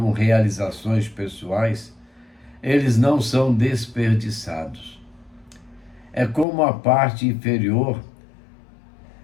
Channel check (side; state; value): right; drops out; at 6.5 s